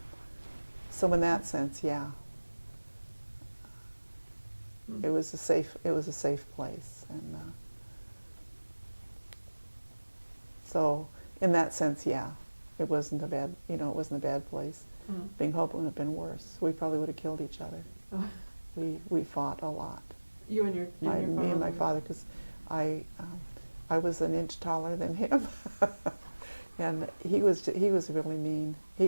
So in that sense, yeah, it was a safe place, and so in that sense, yeah, it wasn't a bad place. Being Hope would have been worse. We probably would have killed each other. Oh. We fought a lot. You and your Me and my father, because I was an inch taller than him, and he was really mean. He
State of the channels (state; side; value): inverted; both; correlation -1.00